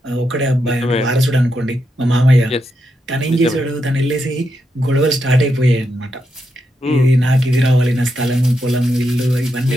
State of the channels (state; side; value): normal; both; correlation 0.84